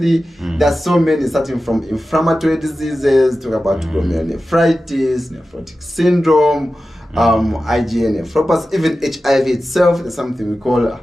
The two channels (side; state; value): both; normal; correlation 0.94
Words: there's so many, starting from inflammatory diseases, talk about glomerulonephritis, nephrotic syndrome, IgA nephropathy, even HIV itself. There's something we call